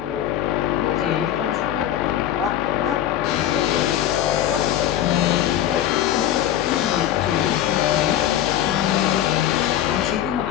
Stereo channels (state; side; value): quieter; right; 11.7 dB